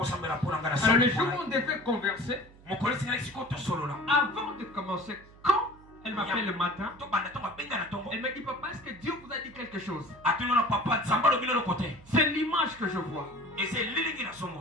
le jour où on devait converser, avant de commencer, quand elle m'appelle le matin, elle m'a dit papa, est-ce que Dieu vous a dit quelque chose? C'est l'image que je vois.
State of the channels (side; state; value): right; noise; hum, 23 dB below the sound